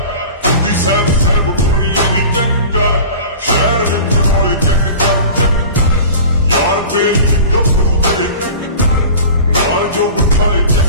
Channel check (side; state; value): both; inverted; correlation -0.38